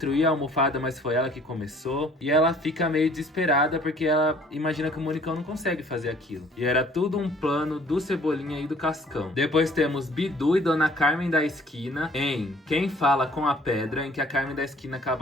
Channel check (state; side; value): normal; both; correlation 0.56